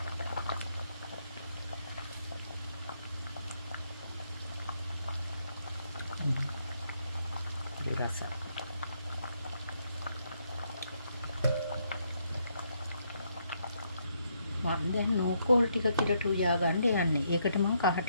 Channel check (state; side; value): inverted; both; correlation -0.75